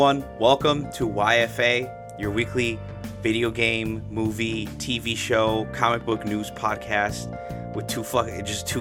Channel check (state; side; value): identical; both; correlation 1.00